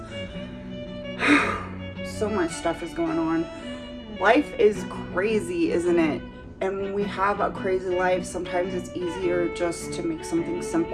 so much stuff is going on. Life is crazy, isn't it? And when we have a crazy life, sometimes it's easier just to make something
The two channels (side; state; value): both; identical; correlation 1.00